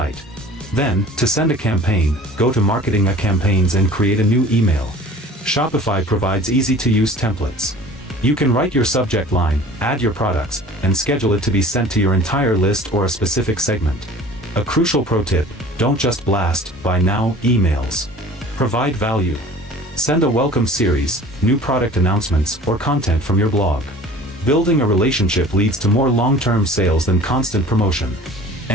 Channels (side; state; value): both; normal; correlation 0.45